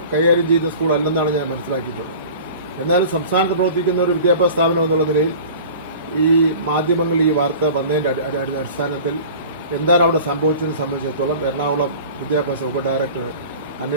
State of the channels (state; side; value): inverted; both; correlation -0.41